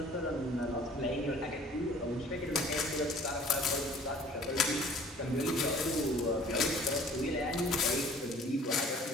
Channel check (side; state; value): both; normal; correlation 0.51